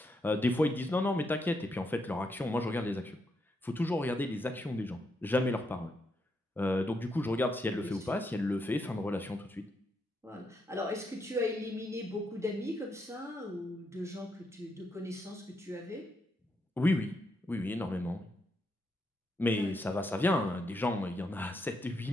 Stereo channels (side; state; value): both; normal; correlation 0.80